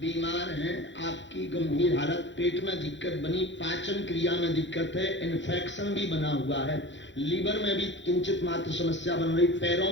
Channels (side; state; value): right; late; 0.54 ms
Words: हैं, आपकी गंभीर हालत, पेट में दिक्कत बनी, पाचन क्रिया में दिक्कत है, इन्फेक्शन भी बना हुआ है, लीवर में भी किंचित मात्र समस्या बन रही, पैरों